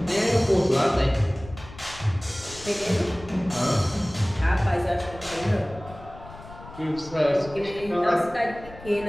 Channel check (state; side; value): noise; left; rumble, 17 dB below the sound